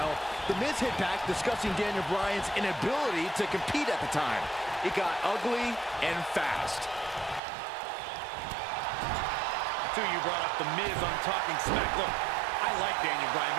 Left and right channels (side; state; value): left; drops out; at 7.4 s